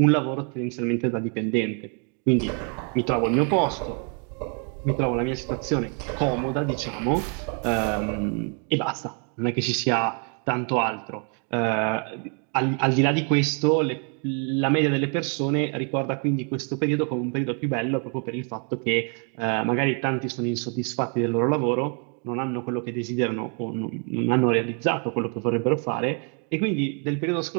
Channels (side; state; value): left; quieter; 39.7 dB